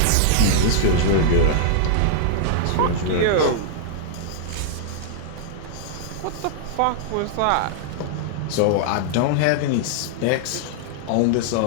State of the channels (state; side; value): different; both; correlation -0.01